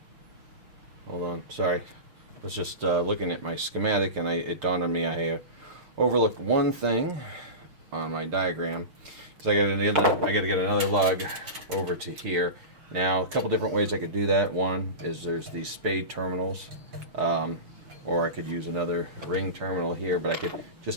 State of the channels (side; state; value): left; late; 6.6 ms